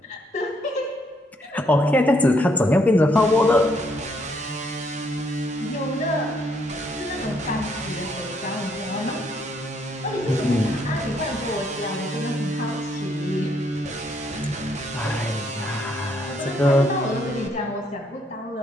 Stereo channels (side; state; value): both; normal; correlation 0.71